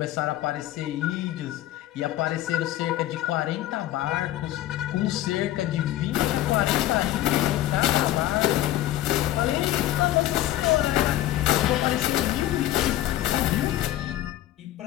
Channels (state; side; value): quieter; right; 14.1 dB